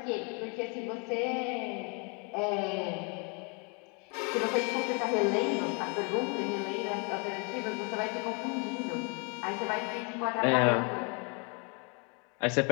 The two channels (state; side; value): quieter; right; 34.3 dB